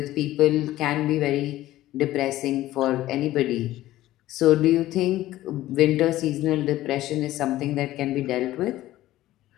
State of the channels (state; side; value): quieter; right; 15.3 dB